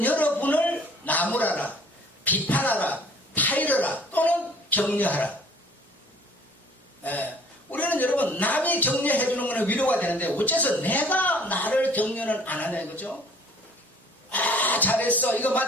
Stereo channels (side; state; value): both; normal; correlation 0.54